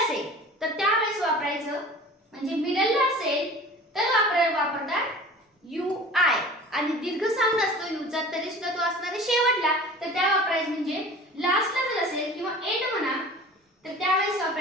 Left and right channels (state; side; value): normal; both; correlation 0.42